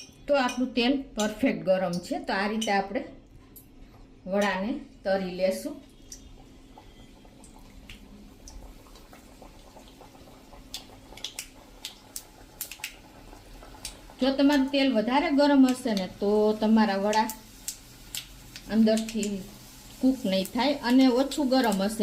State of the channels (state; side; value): identical; both; correlation 1.00